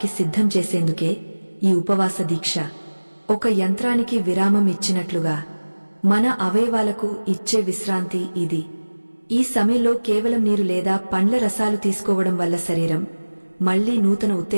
సిద్ధం చేసేందుకే ఈ ఉపవాస దీక్ష. ఒక యంత్రానికి విరామం ఇచ్చినట్లుగా మన అవయవాలకు ఇచ్చే విశ్రాంతి ఇది. ఈ సమయంలో కేవలం నీరు లేదా పండ్ల రసాలు తీసుకోవడం వల్ల శరీరం మళ్లీ నూతన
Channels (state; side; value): inverted; both; correlation -1.00